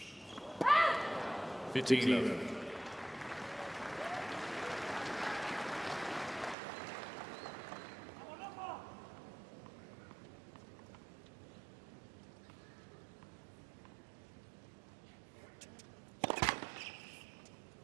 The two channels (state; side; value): drops out; left; at 6.6 s